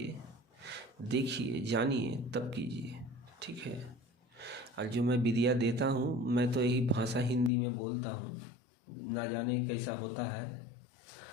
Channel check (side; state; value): right; drops out; at 7.5 s